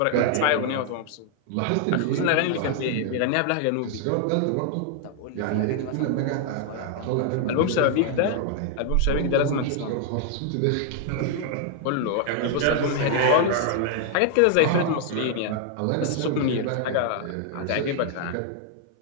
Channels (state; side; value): different; both; correlation 0.00